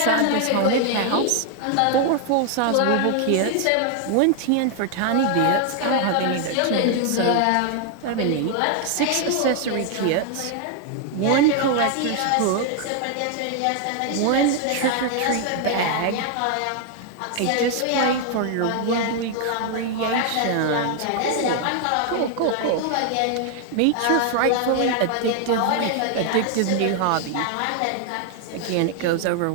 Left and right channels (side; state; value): both; different; correlation 0.00